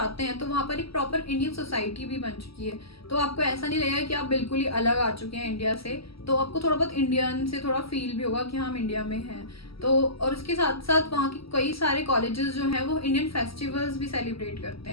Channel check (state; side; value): late; right; 0.75 ms